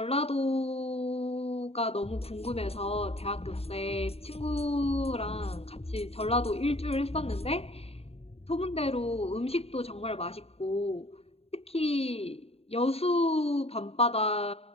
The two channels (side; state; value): right; late; 0.29 ms